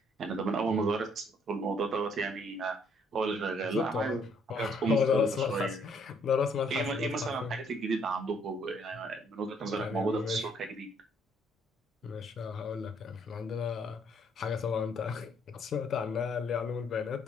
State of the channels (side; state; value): both; normal; correlation 0.66